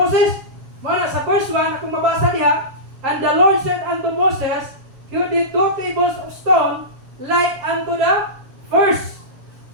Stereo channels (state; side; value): late; left; 7.2 ms